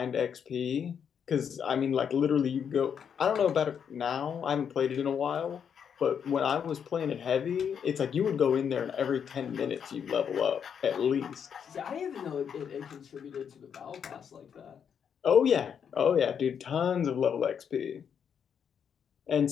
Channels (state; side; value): quieter; right; 7.6 dB